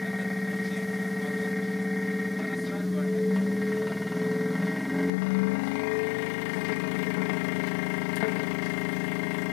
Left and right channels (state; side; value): drops out; right; at 5.1 s